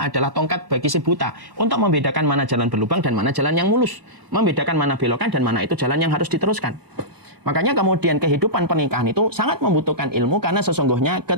tongkat bagi si buta, untuk membedakan mana jalan berlubang dan mana jalan yang mulus. Membedakan mana belokan dan mana itu jalan yang harus diteruskan. Makanya kemudian kehidupan pernikahan itu sangat membutuhkan ilmu, karena sesungguhnya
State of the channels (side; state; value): left; late; 1.1 ms